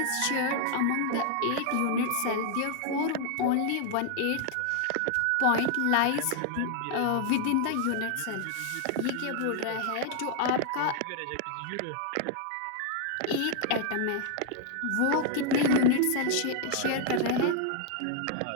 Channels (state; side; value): different; both; correlation 0.00